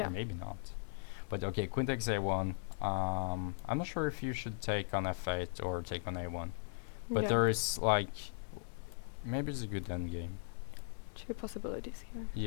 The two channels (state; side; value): silent; right; digital silence